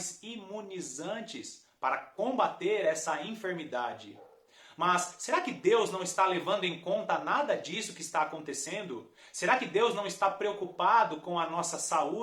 imunizantes para combater essa enfermidade. Mas será que Deus não está levando em conta nada disso que está acontecendo? Será que Deus não está preocupado com a nossa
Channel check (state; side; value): identical; both; correlation 1.00